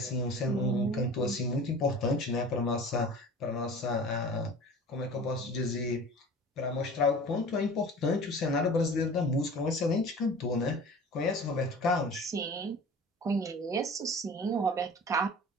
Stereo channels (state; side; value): normal; both; correlation 0.41